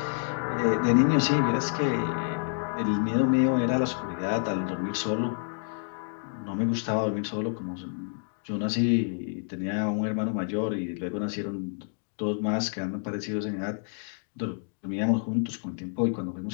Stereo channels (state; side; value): silent; right; 59 dB below the other